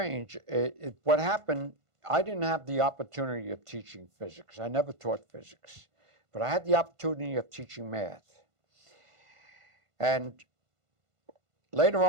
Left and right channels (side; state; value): left; late; 1.5 ms